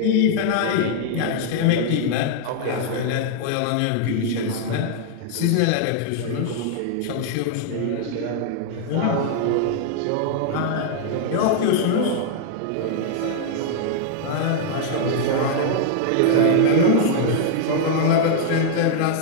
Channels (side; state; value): both; different; correlation -0.01